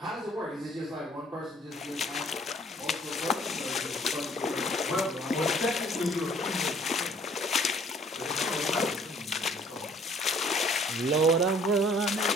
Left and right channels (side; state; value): both; normal; correlation 0.57